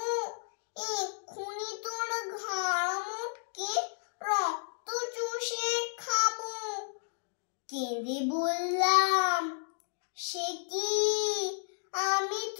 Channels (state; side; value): silent; right; digital silence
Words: এক্ষুনি তোর ঘাড় মোটকে রক্ত চুষে খাবো। কেঁদে বললাম, সে কি, আমি